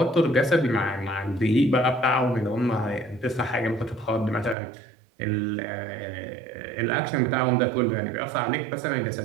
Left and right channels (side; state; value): left; drops out; at 4.5 s